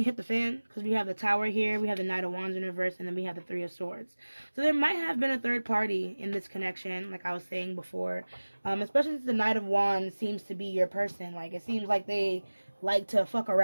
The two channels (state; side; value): inverted; both; correlation -1.00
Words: hit the fan, because we have the Tower here, we have the Knight of Wands in reverse, and then we have the Three of Swords. So there might have been a third party in this connection, like I was saying before, especially since the Knight of Wands seems to be your person. Like, it seems like they like to fuck